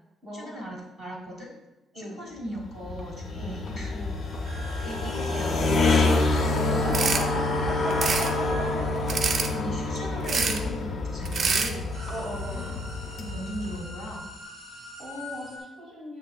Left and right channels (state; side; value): normal; both; correlation 0.68